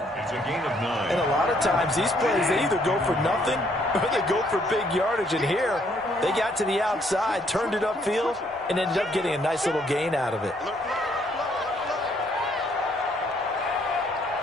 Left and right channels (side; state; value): both; normal; correlation 0.68